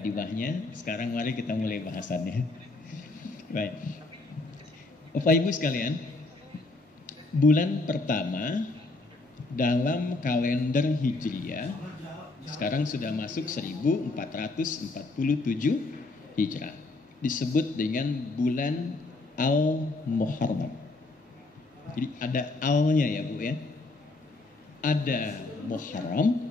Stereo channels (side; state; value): right; quieter; 3.2 dB